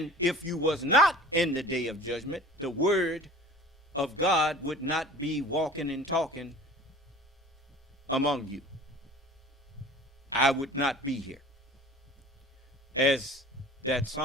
if you was not in the day of judgment, the word of God would not be walking and talking among you. I would not be here. As that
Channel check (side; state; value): both; normal; correlation 0.43